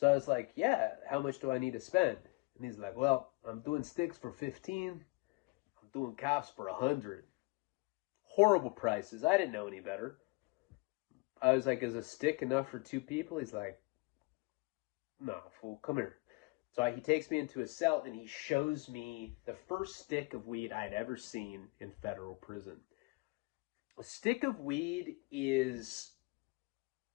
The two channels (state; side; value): quieter; right; 26.5 dB